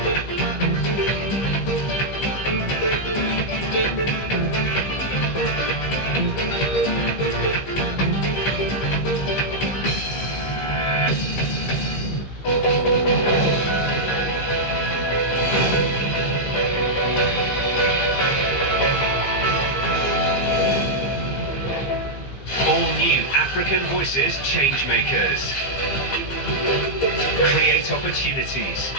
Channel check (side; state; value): right; late; 15 ms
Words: African Voices Changemakers. Create opportunities.